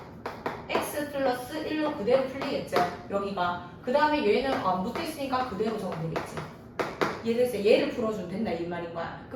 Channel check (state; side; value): identical; both; correlation 1.00